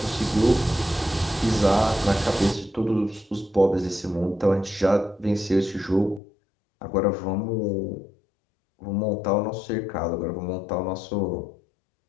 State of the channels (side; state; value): right; drops out; at 6.2 s